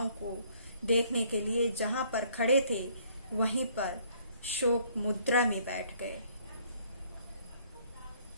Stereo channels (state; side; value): inverted; both; correlation -0.62